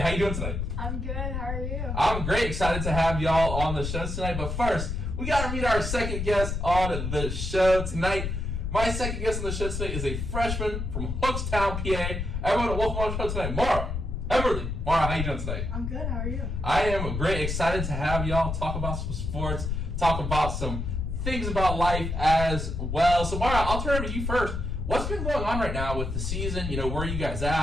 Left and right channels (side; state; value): left; noise; rumble, 3 dB below the sound